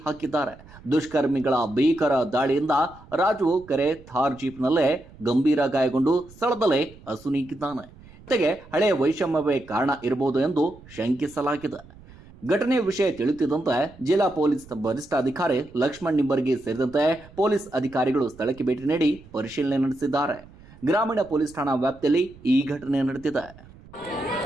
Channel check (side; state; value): right; noise; rumble, 22 dB below the sound